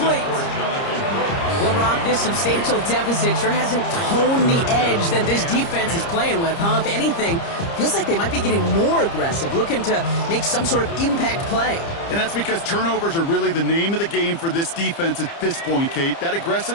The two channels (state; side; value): late; right; 30 ms